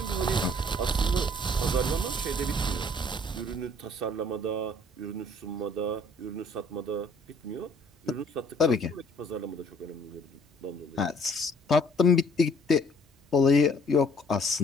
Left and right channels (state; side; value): normal; both; correlation 0.59